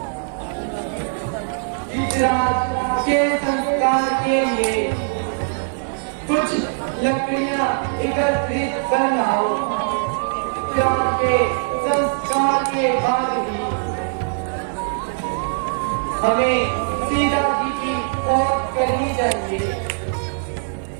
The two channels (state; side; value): silent; left; 65 dB below the other